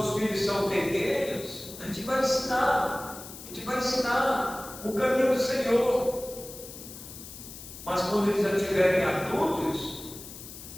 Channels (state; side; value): noise; left; hiss, 14 dB below the sound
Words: filhos são pequenos, a gente vai ensinar o caminho do Senhor. Mas quando eles já estiverem adultos,